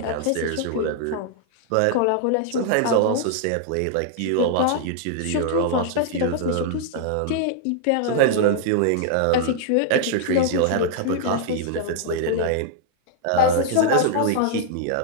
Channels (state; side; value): different; both; correlation -0.01